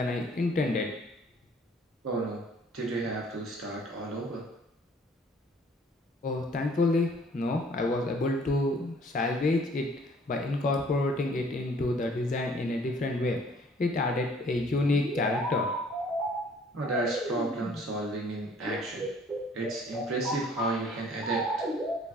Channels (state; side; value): normal; both; correlation 0.57